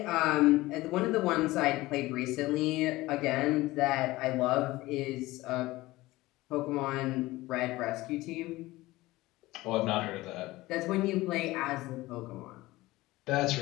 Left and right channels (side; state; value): right; quieter; 18.9 dB